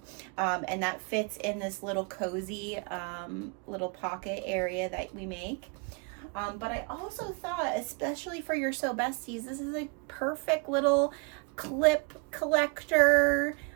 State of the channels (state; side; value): quieter; left; 33.4 dB